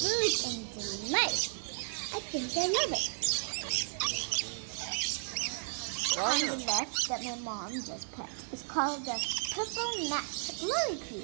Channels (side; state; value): left; silent; digital silence